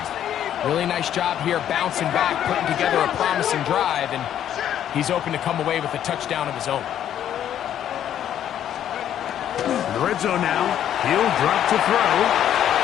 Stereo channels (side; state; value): right; quieter; 10.5 dB